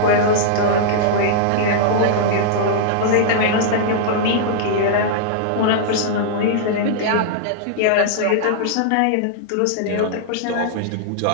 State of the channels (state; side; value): different; both; correlation -0.01